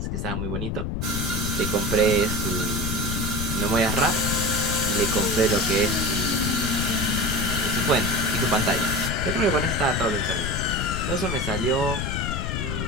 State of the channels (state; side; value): noise; left; rumble, 2 dB below the sound